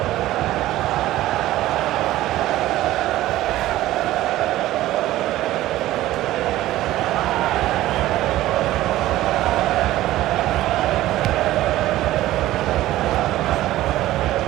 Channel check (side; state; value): left; quieter; 15.4 dB